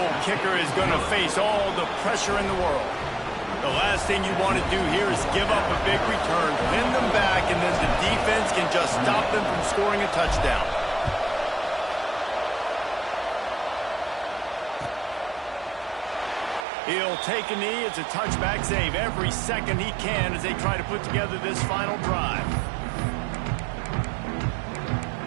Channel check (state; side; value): drops out; left; at 16.7 s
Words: kicker is going to face all the pressure in the world. The last thing you want to do here is give up a big return, pin them back, and then the defense can just stop them from scoring a touchdown. He'll take a knee. It's a touchback, save every second he can as they try to put together this final drive.